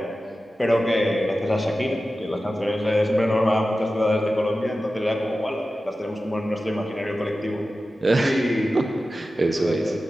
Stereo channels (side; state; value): both; normal; correlation 0.94